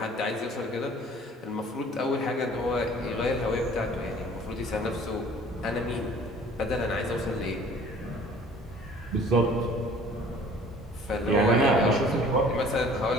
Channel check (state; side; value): normal; both; correlation 0.51